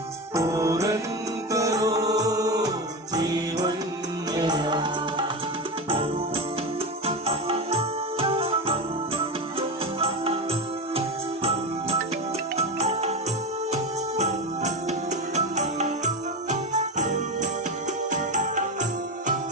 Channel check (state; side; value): normal; both; correlation 0.20